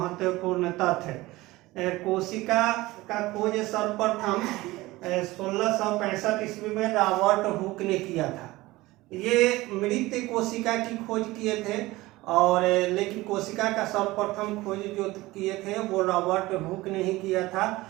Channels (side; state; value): left; quieter; 19.3 dB